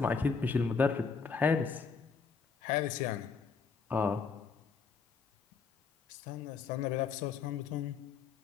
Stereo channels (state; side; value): quieter; right; 5.4 dB